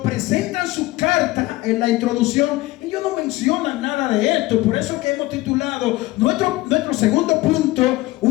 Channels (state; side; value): quieter; right; 18.9 dB